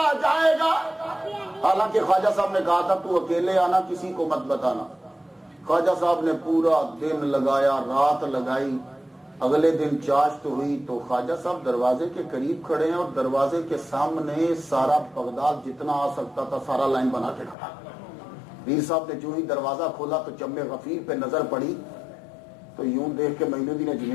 جائے گا. حالانکہ خواجہ صاحب نے کہا تھا تو اکیلے آنا, کسی کو مت بتانا. خواجہ صاحب نے پورا دن لگایا, رات لگائی. اگلے دن چاشت ہوئی تو خواجہ صاحب دروازے کے قریب کھڑے ہیں اور دروازے کے سامنے سارا بغداد جتنا آ سکتا تھا سارا لائن بنا کے کھڑا. پیر صاحب نے جو ہی دروازہ کھولا تو جم غفیر پہ نظر پڑی تو یوں دیکھ کے معین الدین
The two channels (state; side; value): drops out; right; at 17.6 s